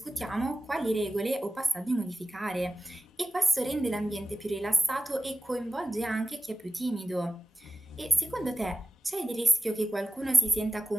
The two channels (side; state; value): both; normal; correlation 0.95